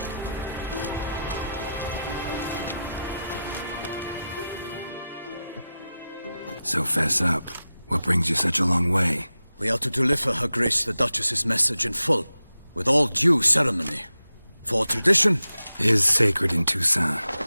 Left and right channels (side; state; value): both; inverted; correlation -0.91